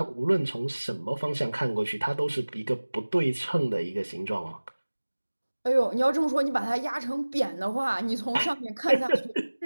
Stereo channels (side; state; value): both; inverted; correlation -1.00